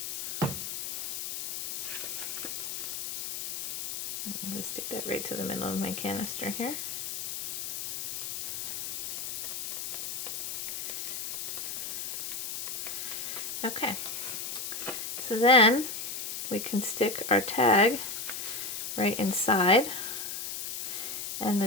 I'm going to stick that right to the middle of my canister here. Okay, so then we can stick our tag right inside, and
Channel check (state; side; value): noise; left; hiss, 5 dB below the sound